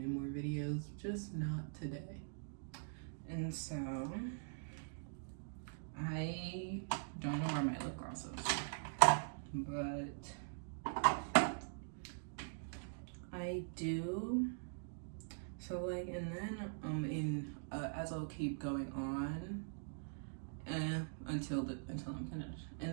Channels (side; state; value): left; silent; digital silence